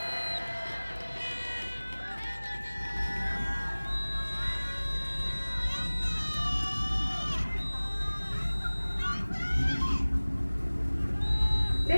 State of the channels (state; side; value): inverted; both; correlation -1.00